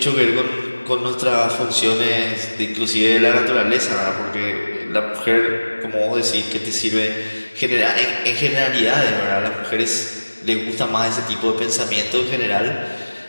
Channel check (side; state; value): both; inverted; correlation -1.00